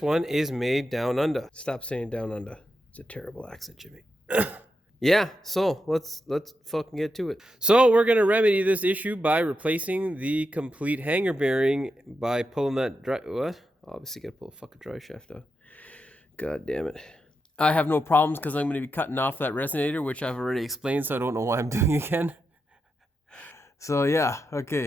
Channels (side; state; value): both; normal; correlation 0.87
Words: one is made down under. Stop saying down under. It's a terrible accent, Jimmy. Yeah, so let's fucking get to it. So we're going to remedy this issue by replacing the complete hanger bearing by pulling that what? Obviously got to pull a fucking Driveshaft out. God damn it. I have no problems because I'm going to be cutting off that resonator, which I've already explained, so I don't know why I'm doing again. So yeah,